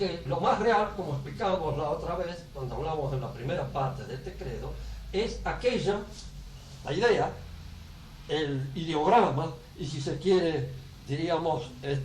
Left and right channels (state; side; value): identical; both; correlation 1.00